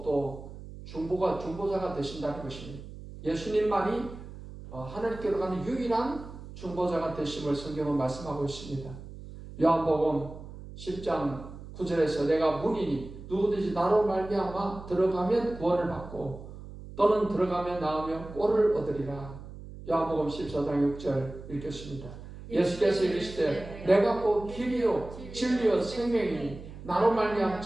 또 중보자가 되신다는 것입니다. 예수님만이 하나님께로 가는 유일한 중보자가 되심을 성경은 말씀하고 있습니다. 요한복음 10장 9절에서 내가 문이니 누구든지 나로 말미암아 들어가면 구원을 받고 또는 들어가면 나오면 꼴을 얻으리라. 요한복음 14장 6절 읽겠습니다. 예수께서 이르시되 내가 곧 길이요 진리요 생명이니 나로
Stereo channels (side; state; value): right; noise; hum, 14 dB below the sound